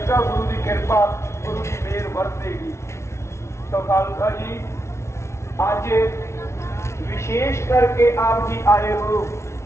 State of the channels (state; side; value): late; right; 0.13 ms